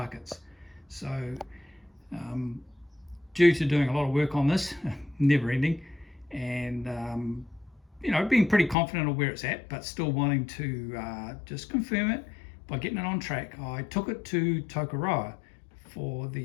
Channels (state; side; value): drops out; right; at 8.8 s